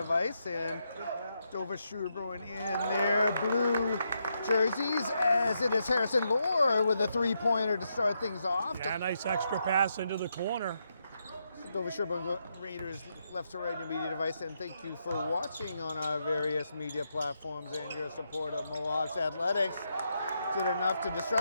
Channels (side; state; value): both; inverted; correlation -0.81